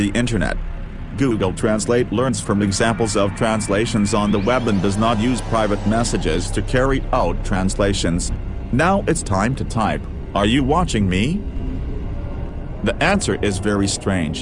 internet. Google Translate learns from examples of translations on the web and does not use private messages to carry out translations. Now it's time to type, "Are you watching me?" The answer is very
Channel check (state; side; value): identical; both; correlation 1.00